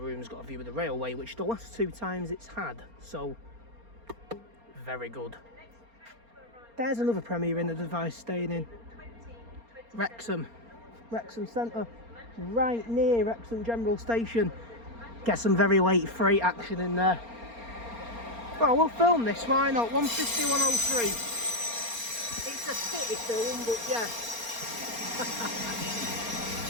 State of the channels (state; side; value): late; left; 4.3 ms